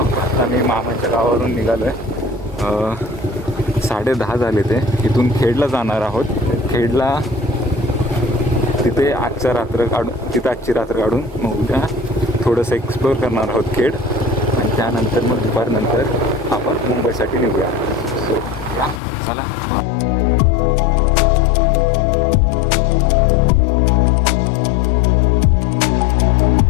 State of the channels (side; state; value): right; drops out; at 19.0 s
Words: आता मी मामाच्या गावावरून निघालोय. 10:30 झाले ते. इथून खेडला जाणार आहोत. खेडला तिथे आजची रात्र काढून मग उद्या थोडंसं एक्सप्लोअर करणार आहोत खेड, आणि त्यानंतर मग दुपारनंतर आपण मुंबईसाठी निघूया. सो या चला.